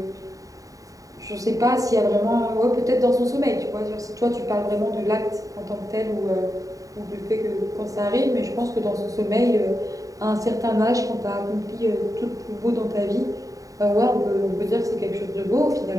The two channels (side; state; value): left; late; 0.16 ms